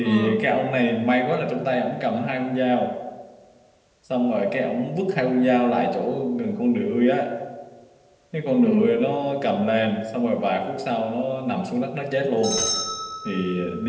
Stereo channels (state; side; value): identical; both; correlation 1.00